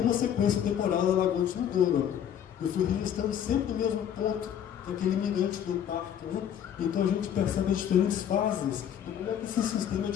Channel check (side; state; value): right; quieter; 9.4 dB